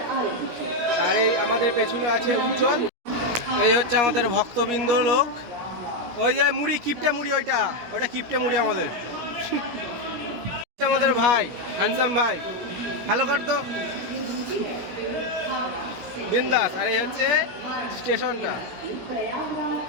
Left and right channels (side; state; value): left; late; 17 ms